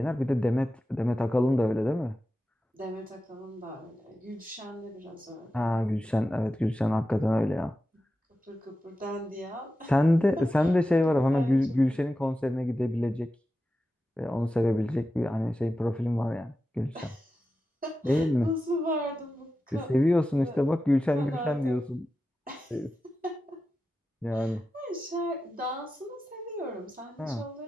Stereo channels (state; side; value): normal; both; correlation 0.92